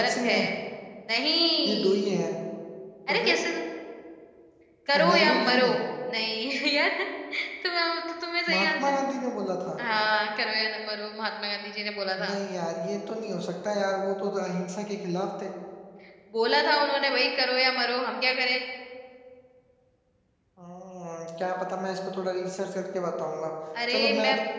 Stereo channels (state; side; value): identical; both; correlation 1.00